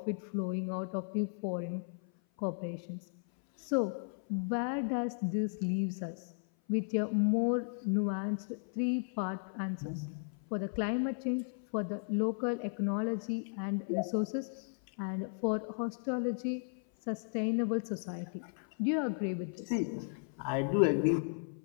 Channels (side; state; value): right; silent; 54 dB below the other